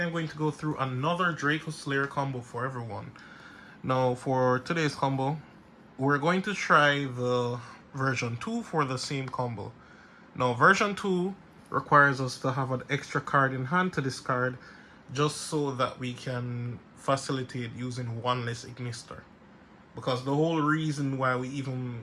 going to go through another Dracoslayer combo for everyone. Now for today's combo, we're going to try the version 2 for the same combo. Now version 2 requires us to have an extra card in hand to discard just so that we can facilitate using one less Ignister. Because the whole reason why we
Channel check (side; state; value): both; identical; correlation 1.00